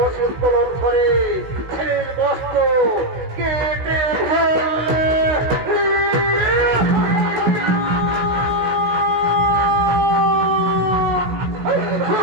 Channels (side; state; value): left; late; 16 ms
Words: অসুত্তোলন করে ছেলের বস্ত্র কেটে ফেললে।